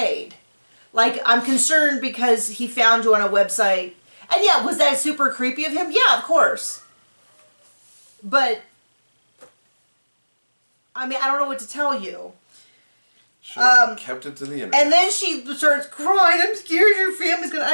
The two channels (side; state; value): both; inverted; correlation -1.00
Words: Like, I'm concerned because he found you on a website. And yeah, was that super creepy of him? Yeah, of course. But, I mean, I don't know what to tell you. Should have kept it to the internet. And then she starts crying. I'm scared your family's gonna.